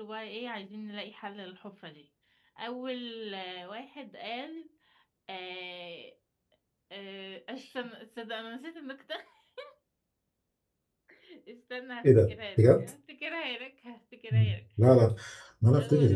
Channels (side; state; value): both; identical; correlation 1.00